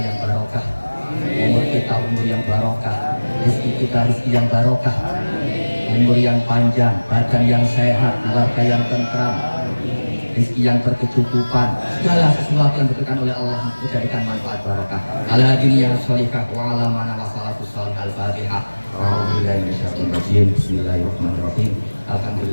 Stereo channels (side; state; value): both; inverted; correlation -1.00